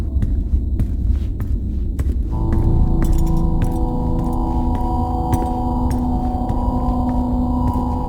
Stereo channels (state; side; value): identical; both; correlation 1.00